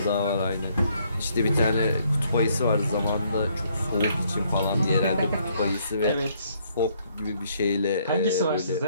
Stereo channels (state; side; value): inverted; both; correlation -0.68